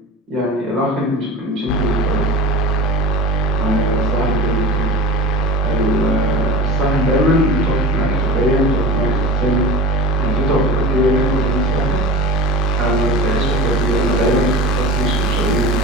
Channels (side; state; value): both; normal; correlation 0.32